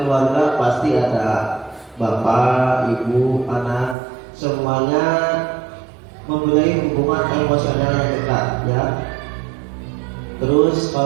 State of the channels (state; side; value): drops out; left; at 4.0 s